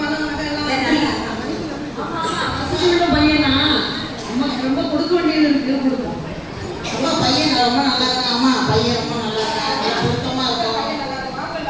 பையனா அம்மாக்கு ரொம்ப கொடுக்க வேண்டியது இருக்கு, கொடுக்கும். அம்மா பையன் ரொம்ப நல்லா இருக்கான். அம்மா பையன் ரொம்ப நல்லா இருக்கான், பொருத்தமா இருக்கும்.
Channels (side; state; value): both; identical; correlation 1.00